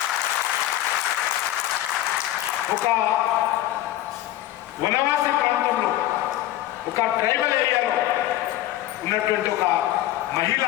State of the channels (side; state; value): right; quieter; 14.3 dB